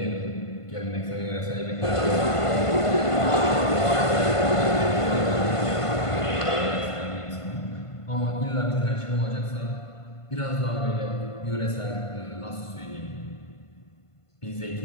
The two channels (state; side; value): late; right; 1.5 ms